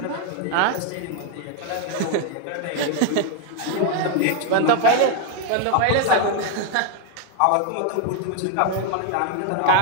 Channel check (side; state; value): both; different; correlation 0.00